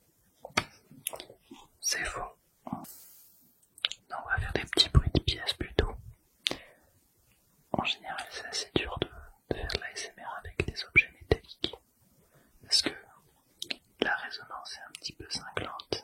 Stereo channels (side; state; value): both; identical; correlation 1.00